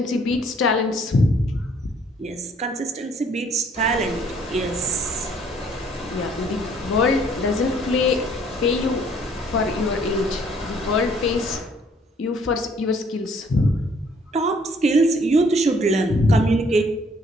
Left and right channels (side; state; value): both; normal; correlation 0.61